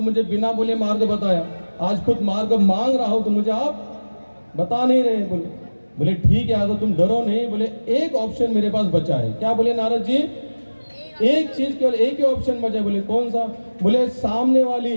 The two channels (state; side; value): inverted; both; correlation -1.00